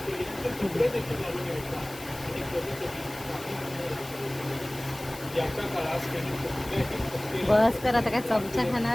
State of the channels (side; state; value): left; noise; hiss, 16 dB below the sound